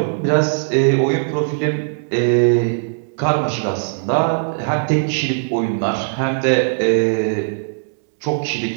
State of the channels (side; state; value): left; silent; digital silence